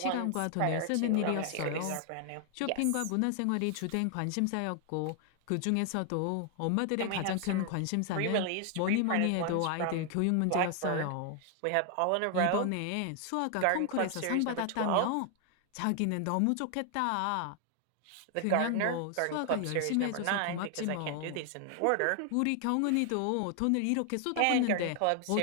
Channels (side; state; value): both; different; correlation 0.00